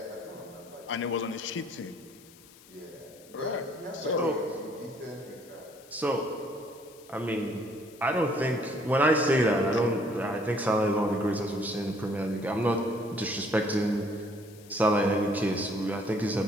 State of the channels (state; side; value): noise; left; hiss, 23 dB below the sound